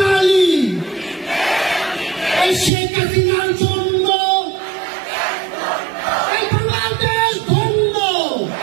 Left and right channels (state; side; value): drops out; left; at 2.7 s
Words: এই শেখ হাসিনার জন্য এই বাংলাদেশ ধন্য